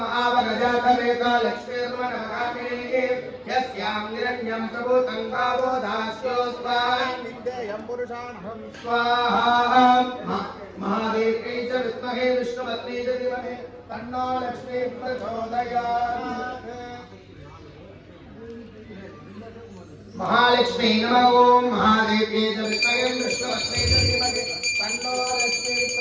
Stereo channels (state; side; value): identical; both; correlation 1.00